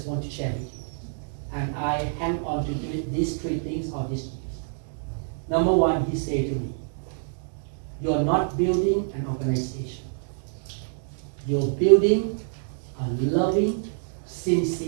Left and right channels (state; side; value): silent; left; digital silence